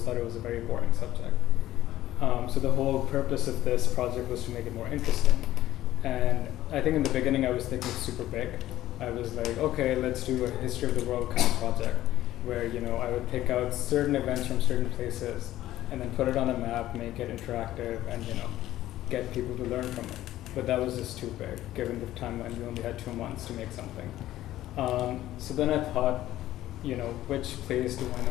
thought it was a very boring subject. So the whole purpose of this project was to make it more interesting. And I think in the beginning I was thinking super big. I was like, okay, let's do a history of the world kind of project where I would pick out certain events from certain places and then put it on a map, make it interactive, and get people to learn from it. But that was just too big, given the timeline. We only had 2 months to make something. So then I thought, which place do I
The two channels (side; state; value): right; quieter; 14.3 dB